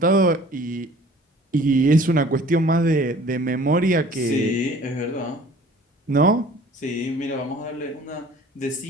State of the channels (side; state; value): both; normal; correlation 0.50